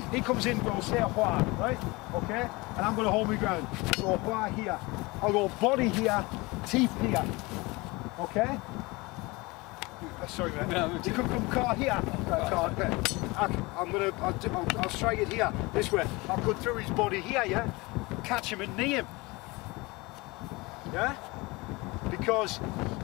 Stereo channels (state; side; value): quieter; right; 24.0 dB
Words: He comes in, we'll say a hua, right? Okay? And I'm going to hold my ground. So a hua here. I'll go body here, teeth here. Okay? Sorry mate. No, you could come car here. Okay. I'll strike it here, this way. I'll go through his body here, yeah? Catch him and knee him. Yeah? Because